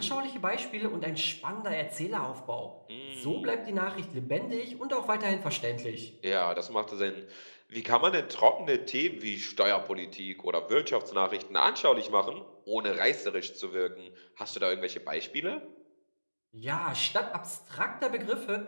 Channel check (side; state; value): both; inverted; correlation -1.00